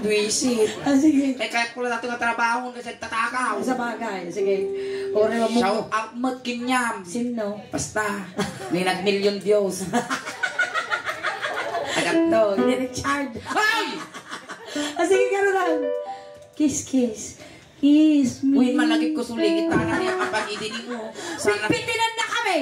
Duisit. Sige. Kaya ko lang dati nga trabaho kasi tatakaw. Sa bagay. Sige. Ore mo. Shout out mo't kinyam. Sino? Basta. May nag-million Diyos. Agad to. Richard. Ay! Sige, gano'n lang. Kiss, kiss. Kiss me. Uy, malagip ko suligit na niya kapag idinig mo. Sana Bitinan na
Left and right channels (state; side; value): identical; both; correlation 1.00